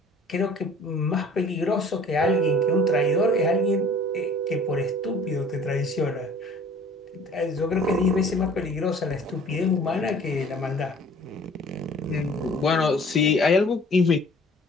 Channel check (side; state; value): both; normal; correlation 0.50